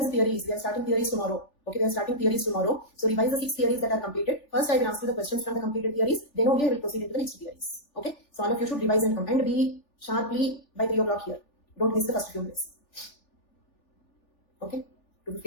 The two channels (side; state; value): right; late; 3.4 ms